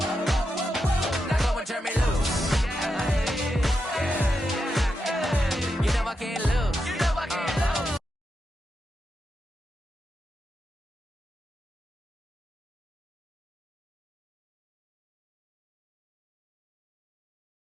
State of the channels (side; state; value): both; normal; correlation 0.86